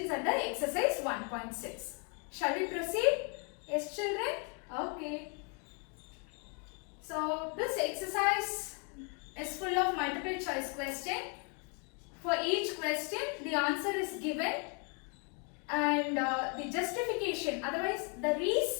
under exercise 1.6. Shall we proceed? Yes children? Okay, so this exercise is full of multiple choice question. For each question the answer is given and the justification, otherwise the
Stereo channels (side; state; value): right; quieter; 37.5 dB